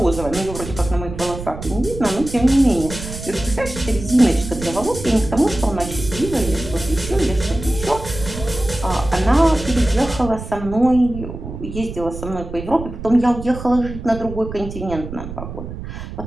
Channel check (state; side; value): noise; right; rumble, 10 dB below the sound